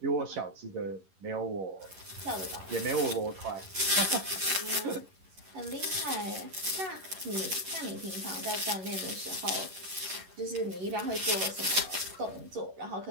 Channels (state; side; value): late; left; 11 ms